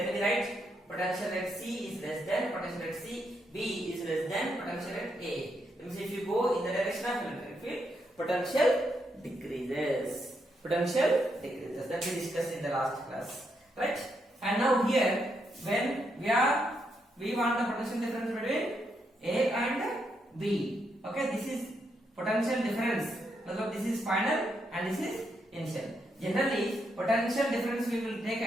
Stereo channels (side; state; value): both; normal; correlation 0.79